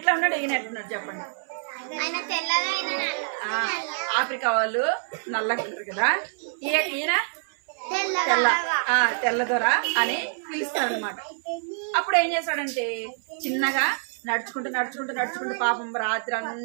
ఉన్నాడు, ఈయన ఎట్లున్నాడు చెప్పండి. ఆఫ్రికా వాళ్ళు నల్లగా ఉంటారు కదా, ఈయన తెల్ల దొర అని పిలుస్తాడు అనమాట. అప్పుడు ఏం చేస్తాడంటే చిన్నగా నడుచుకుంటూ పాపం రాత్రి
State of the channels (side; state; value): left; silent; 61 dB below the other